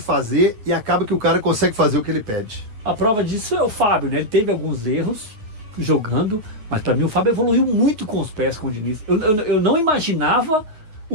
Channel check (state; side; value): late; left; 9.5 ms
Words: e acaba que o cara consegue fazer o que ele pede. A prova disso é o Fábio, né? Ele teve alguns erros jogando, mas para mim o Fábio evoluiu muito com os pés com o Diniz. Eu não imaginava